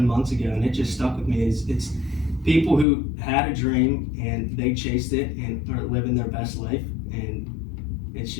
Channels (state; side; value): drops out; right; at 2.9 s